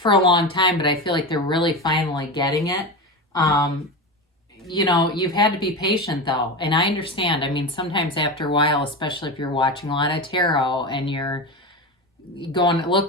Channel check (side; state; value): both; normal; correlation 0.22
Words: a long time, but I feel like they're really finally getting it. You know, you've had to be patient though. And I understand. I mean, sometimes after a while, especially if you're watching a lot of tarot and you're going,